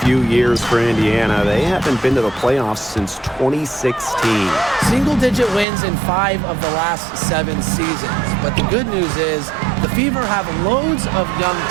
few years for Indiana. They haven't been to the playoffs since 2016. Single-digit wins in 5 of the last 7 seasons. But the good news is the Fever have loads of young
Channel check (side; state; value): left; drops out; at 5.7 s